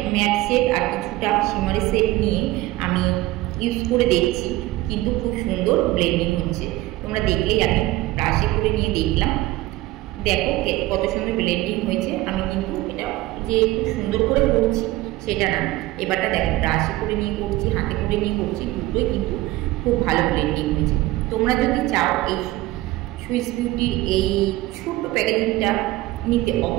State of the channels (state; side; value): quieter; left; 17.8 dB